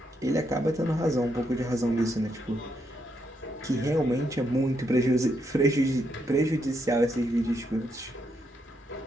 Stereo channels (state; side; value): normal; both; correlation 0.78